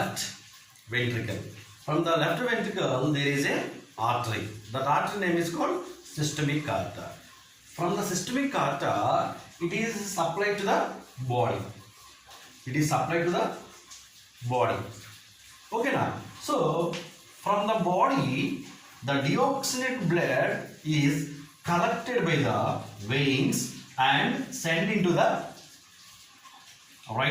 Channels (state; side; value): identical; both; correlation 1.00